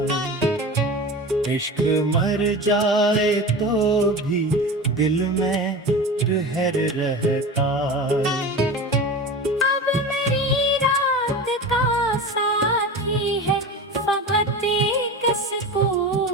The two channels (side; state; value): both; normal; correlation 0.30